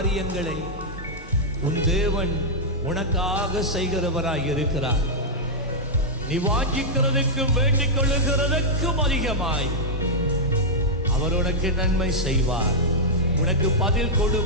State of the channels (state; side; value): normal; both; correlation -0.07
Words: உன் தேவன் உனக்காக செய்கிறவராய் இருக்கிறார். நீ வாஞ்சிக்கிறதுக்கும் வேண்டிக் கொள்ளுகிறதுக்கும் அதிகமாய் அவர் உனக்கு நன்மை செய்வார், உனக்கு பதில்